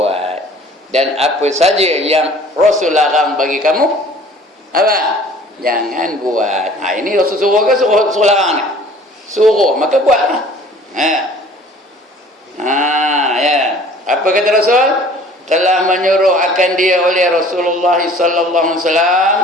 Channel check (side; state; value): both; normal; correlation 0.50